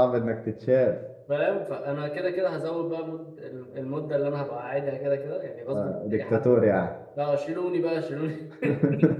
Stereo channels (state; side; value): identical; both; correlation 1.00